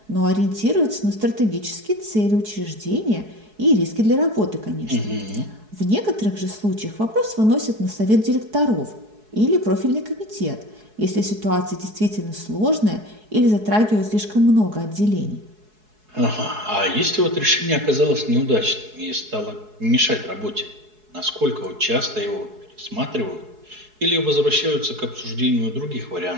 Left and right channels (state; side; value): late; left; 4.7 ms